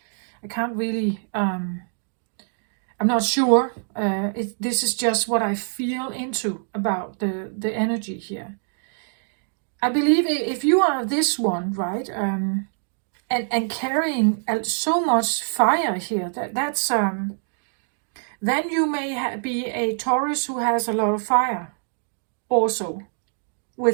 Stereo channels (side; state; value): left; silent; digital silence